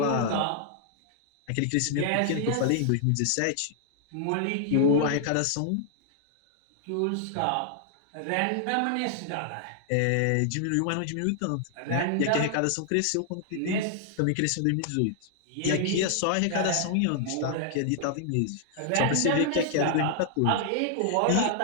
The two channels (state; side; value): different; both; correlation 0.00